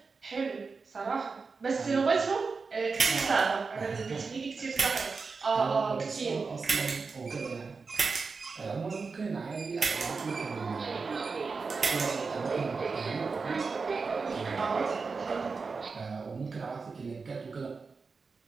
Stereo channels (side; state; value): left; quieter; 4.6 dB